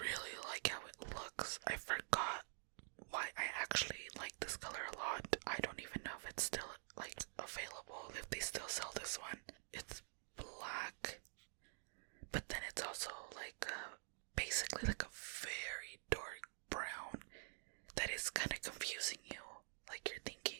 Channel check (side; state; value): left; silent; digital silence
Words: like how it looks. I forgot why I